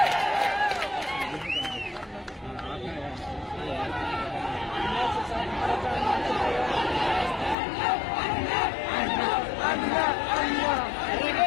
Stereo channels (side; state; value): right; drops out; at 7.6 s